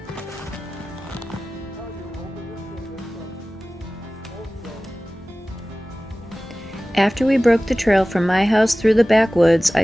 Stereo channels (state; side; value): normal; both; correlation 0.97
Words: After we broke the trail from my house through the backwoods, I